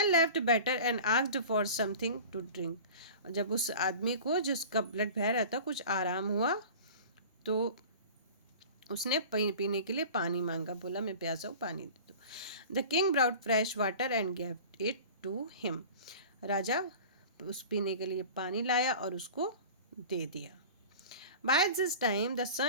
left better and asked for something to drink. जब उस आदमी को जिसका ब्लड बह रहा था कुछ आराम हुआ तो उसने पीने के लिए पानी मांगा, बोला मैं प्यासा हूँ, पानी दे दो। The king brought fresh water and gave it to him. राजा उस पीने के लिए पानी लाया और उसको दे दिया। By this time the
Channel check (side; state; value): both; inverted; correlation -0.38